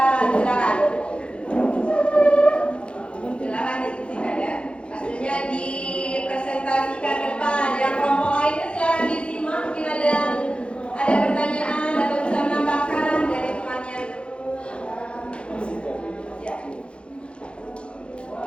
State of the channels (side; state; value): right; late; 0.058 ms